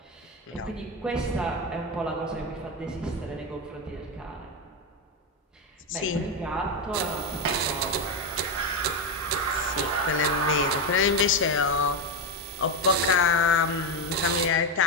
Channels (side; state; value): both; normal; correlation 0.09